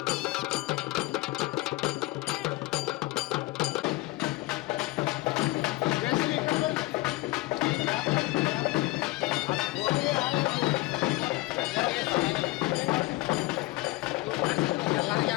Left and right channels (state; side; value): quieter; right; 20.5 dB